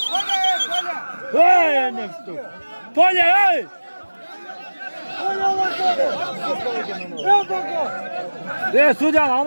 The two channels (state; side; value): inverted; both; correlation -1.00